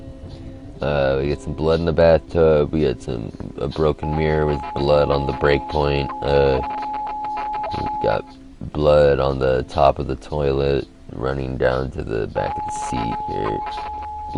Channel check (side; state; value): both; identical; correlation 1.00